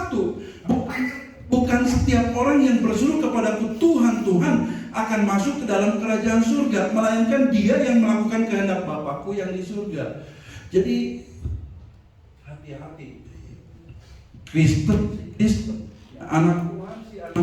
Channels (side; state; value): both; identical; correlation 1.00